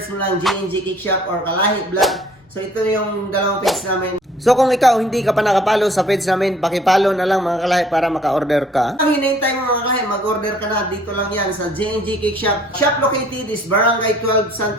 mo lang JNG Cake Shop or Kalahi Vlog. So ito yung dalawang page namin. So kung ikaw hindi ka pa nakapalo sa page namin, pakipalo na lang mga kalahi para maka-order ka. Ang hinihintay mo mga kalahi, mag-order ka na. Dito lang yan sa JNG Cake Shop. Shop located is Barangay 12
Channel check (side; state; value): both; normal; correlation 0.57